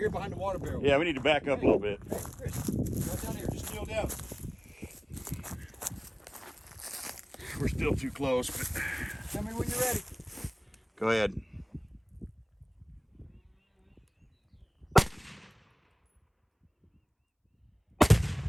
behind the water barrel. Yeah, we need to back up a little bit. Hey, Chris, go down here. Just kneel down. We're still too close, but Tell me when you're ready. go ahead.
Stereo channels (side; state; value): both; identical; correlation 1.00